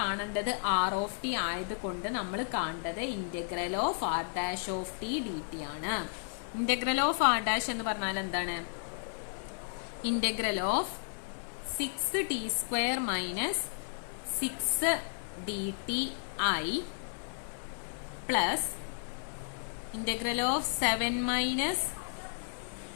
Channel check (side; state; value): right; silent; digital silence